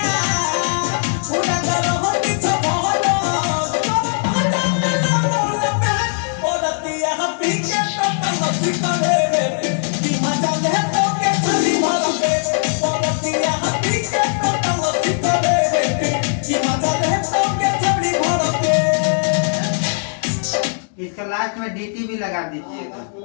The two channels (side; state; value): right; silent; digital silence